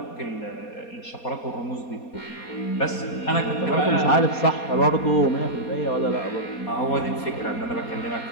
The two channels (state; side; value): late; right; 4.2 ms